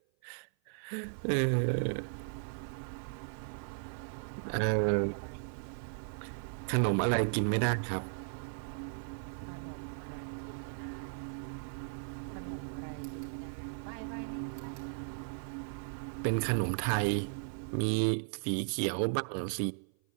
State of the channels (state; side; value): silent; left; 54 dB below the other